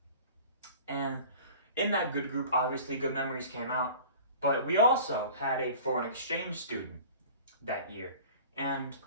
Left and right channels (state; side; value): inverted; both; correlation -0.43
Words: And in that good group, obviously, good memories came out. But we also had a foreign exchange student that year. And